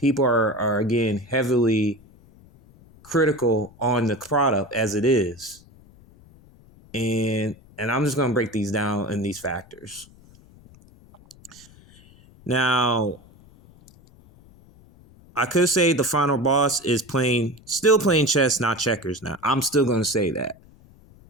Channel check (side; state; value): left; noise; rumble, 25 dB below the sound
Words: are again, heavily critical on the product as it is. And I'm just going to break these down in these factors. Now, I could say the final boss is still playing chess, not checkers now. I'm still going to say that.